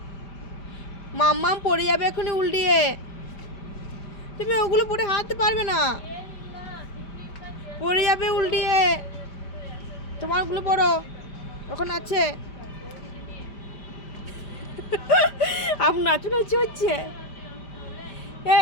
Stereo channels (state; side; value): late; right; 5.1 ms